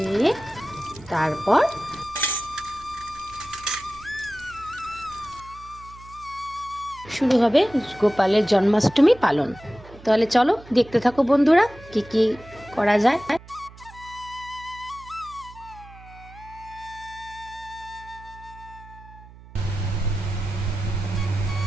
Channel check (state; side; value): noise; right; hum, 20 dB below the sound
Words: তারপর শুরু হবে গোপালের জন্মাষ্টমী পালন। তাহলে চলো দেখতে থাকো বন্ধুরা, কি কি করা যায়।